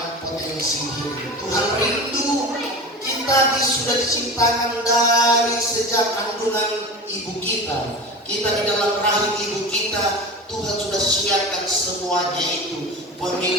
potensi hidup. Tuhan rindu kita sudah diciptakan dari sejak kandungan ibu kita. Kita di dalam rahim ibu kita, Tuhan sudah siapkan semuanya itu.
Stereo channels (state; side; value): normal; both; correlation 0.31